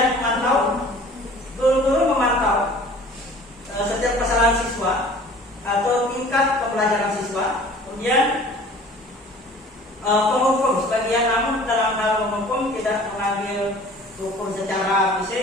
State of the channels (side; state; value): both; normal; correlation 0.47